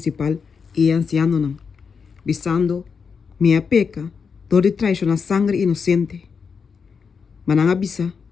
e anciano nan visando minha peca dor de traição na sangue inocente. Mas não avisa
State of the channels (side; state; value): right; quieter; 5.8 dB